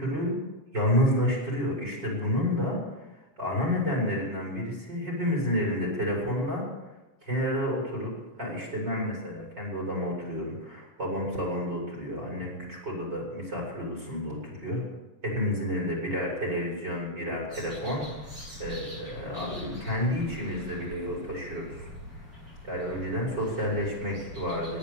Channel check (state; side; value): late; left; 7.1 ms